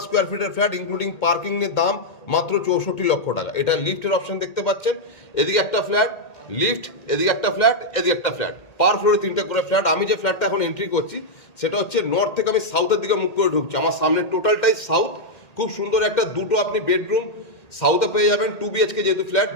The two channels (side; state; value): right; late; 1.8 ms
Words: স্কোয়ার ফিটের ফ্ল্যাট, ইনক্লুডিং পার্কিংয়ের দাম মাত্র 64 লক্ষ টাকা। এটা লিফটের অপশন দেখতে পাচ্ছেন। এদিকে একটা ফ্ল্যাট, লিফট, এদিকে একটা ফ্ল্যাট, এদিকে একটা ফ্ল্যাট, পার ফ্লোরে 3টে করে ফ্ল্যাট। আমি যে ফ্ল্যাটটা এখন এন্ট্রি করছি সেটা হচ্ছে নর্থ থেকে আমি সাউথের দিকে মুখ করে ঢুকছি। আমার সামনে টোটালটাই সাউথ। খুব সুন্দর একটা দুটো আপনি বেডরুম সাউথে পেয়ে যাবেন। 2 BHK যেহেতু ফ্ল্যাট,